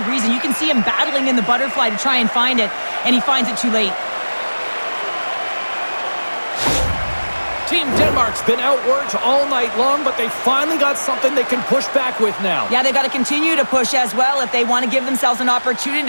reason. You can see him battling in the butterfly to try and find it, and he finds it too late. Team Denmark's been outworked all night long, but they finally got something they can push back with now. Yeah, they got to continue to push as well if they want to give themselves an opportunity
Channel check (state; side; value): inverted; both; correlation -1.00